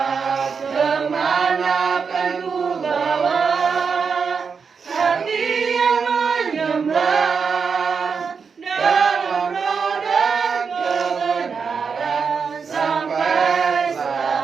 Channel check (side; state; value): left; quieter; 5.7 dB